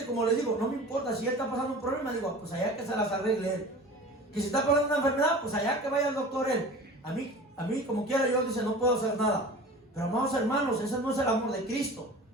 como les digo, no me importa si él está pasando un problema, digo, pues allá que se las arregle él. Que si está pasando una enfermedad, pues allá que vaya el doctor él. A mí como quiera, yo dice, no puedo hacer nada. Pero amados hermanos, ese no es el amor de Cristo.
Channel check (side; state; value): both; normal; correlation 0.39